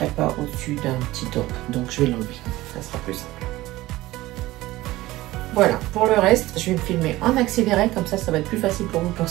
pas au-dessus d'un petit top. Donc, je vais l'enlever. Ça sera plus simple. Voilà, pour le reste, je vais me filmer en accéléré. Comme ça va être plus facile pour vous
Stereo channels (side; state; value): left; quieter; 17.7 dB